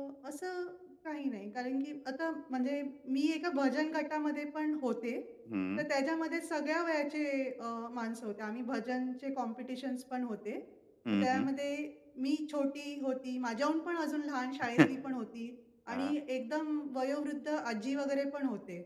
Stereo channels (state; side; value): identical; both; correlation 1.00